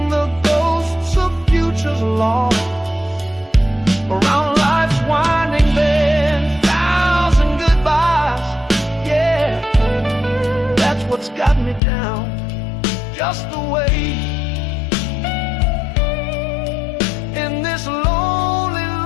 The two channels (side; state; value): right; drops out; at 11.8 s